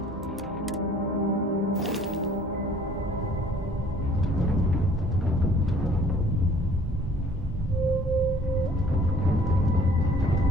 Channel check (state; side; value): normal; both; correlation 0.55